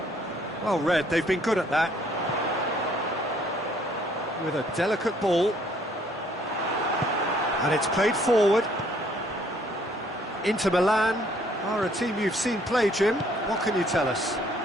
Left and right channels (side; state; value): both; normal; correlation 0.63